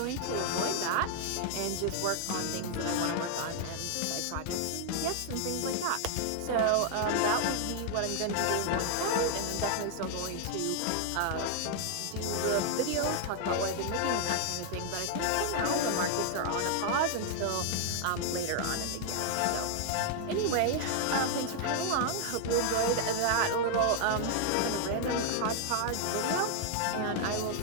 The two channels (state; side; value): different; both; correlation 0.00